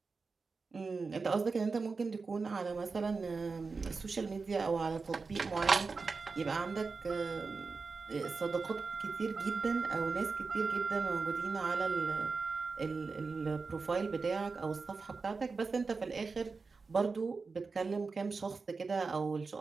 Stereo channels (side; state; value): left; quieter; 4.4 dB